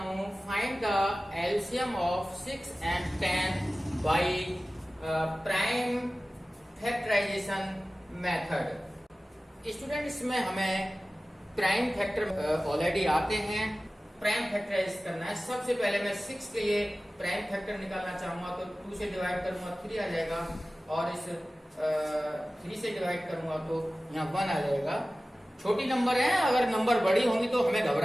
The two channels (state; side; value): normal; both; correlation 0.96